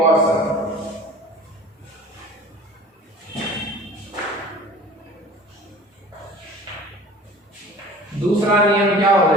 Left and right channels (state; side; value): normal; both; correlation 0.43